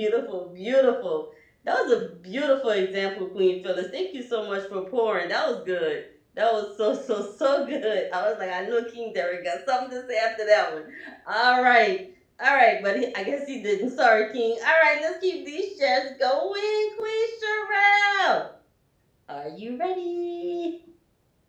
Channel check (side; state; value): both; identical; correlation 1.00